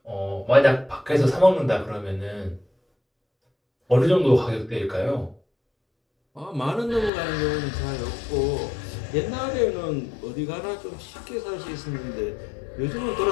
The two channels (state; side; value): drops out; right; at 7.1 s